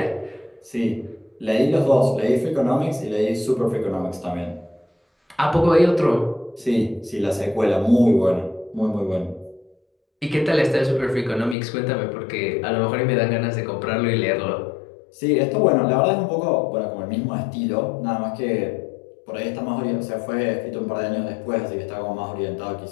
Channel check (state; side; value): drops out; right; at 11.6 s